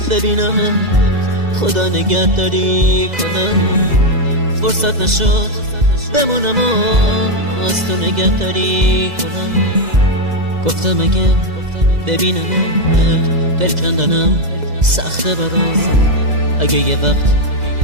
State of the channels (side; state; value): left; late; 2.0 ms